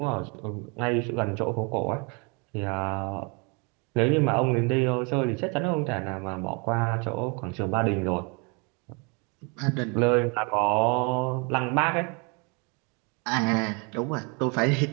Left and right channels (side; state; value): left; quieter; 32.7 dB